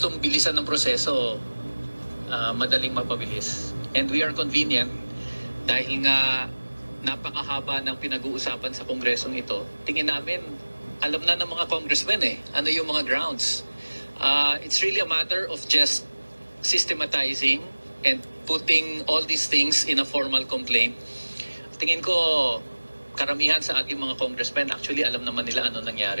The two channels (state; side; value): inverted; both; correlation -1.00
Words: mong bilisan ng proseso, madaling mapabilis. And we are convenient dahil nga napakahaba ng pinag-uusapan sa Kongresong ito. Tingin namin, alam na ng mga congressmen ano yung mga grounds. It's really a matter of just systematizing and putting all these things in a formal complaint. Tingin ko, karamihan sa ating mga congressmen, actually alam naman nila ano